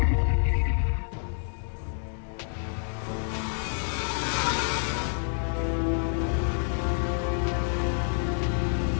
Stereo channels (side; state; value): right; silent; 59 dB below the other